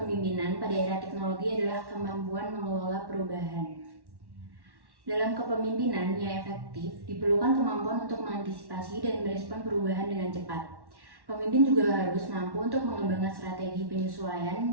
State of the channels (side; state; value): left; late; 1.1 ms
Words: pada era teknologi adalah kemampuan mengelola perubahan. Dalam kepemimpinan yang efektif, diperlukan kemampuan untuk mengantisipasi dan merespon perubahan dengan cepat. Pemimpin juga harus mampu untuk mengembangkan strategi